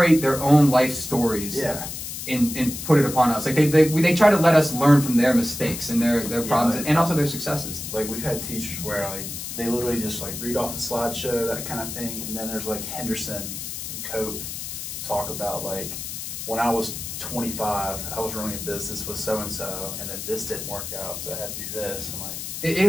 their own life stories. And put it upon us. Like they try to let us learn from their mistakes and their problems and also their successes. Like we've had teachers where like they literally just like read off a slideshow, that kind of thing, and then there's like Henderson and Cope talk about like when I was 25, I was running a business with so and then this didn't work out, so I had to do this. And like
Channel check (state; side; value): noise; left; hiss, 7 dB below the sound